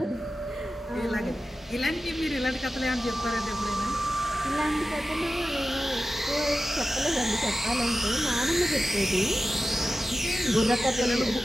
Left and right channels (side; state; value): both; normal; correlation 0.94